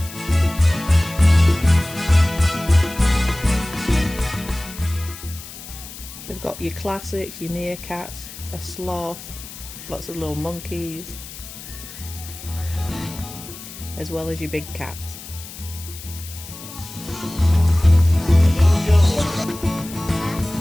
We've got your classics, your meerkats, a sloth, lots of little monkeys, as well as your big cats.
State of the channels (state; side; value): noise; left; hiss, 14 dB below the sound